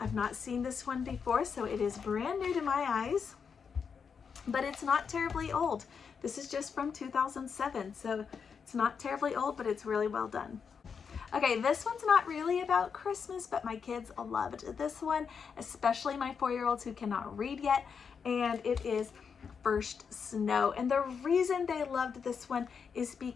not seen this one before, so it is brand new to my eyes, but it's not terribly old. This is just from 2007, so it's not terribly old, but it's really well done. Okay, this one's not really about Christmas, but my kids loved this one, especially my 4-year-olds who cannot read yet, and it is First Snow. And the reason they loved this one is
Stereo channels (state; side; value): quieter; right; 6.2 dB